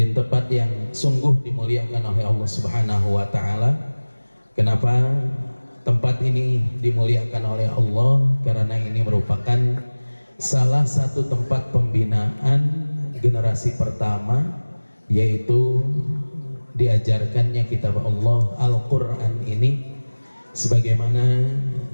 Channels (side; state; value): both; inverted; correlation -1.00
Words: tempat yang sungguh dimuliakan oleh Allah Subhanahu wa Ta'ala. Kenapa tempat ini dimuliakan oleh Allah? Karena ini merupakan salah satu tempat pembinaan generasi pertama, yaitu diajarkannya kitab Allah Al-Quran ini, sebagaimana